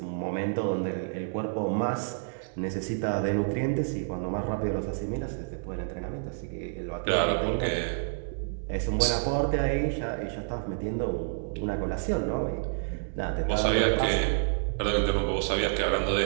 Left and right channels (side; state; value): left; silent; digital silence